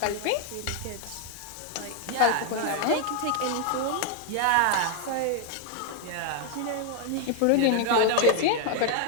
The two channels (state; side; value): different; both; correlation 0.00